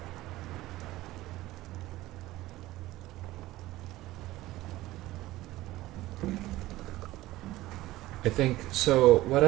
I think, so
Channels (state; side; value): quieter; left; 17.1 dB